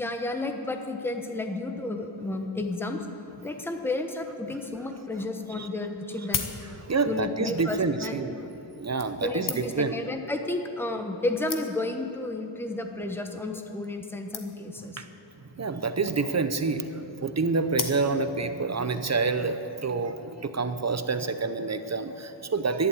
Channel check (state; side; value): normal; both; correlation 0.05